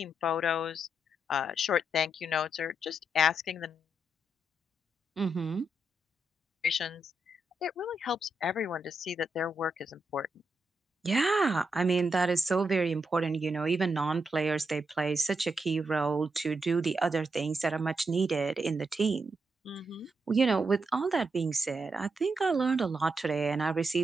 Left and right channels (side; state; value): both; normal; correlation 0.83